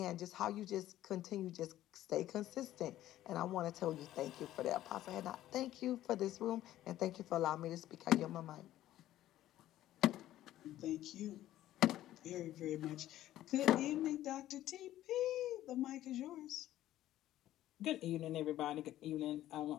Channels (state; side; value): quieter; right; 13.6 dB